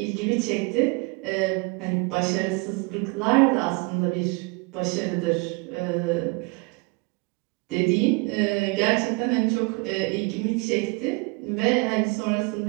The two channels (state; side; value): quieter; left; 28.7 dB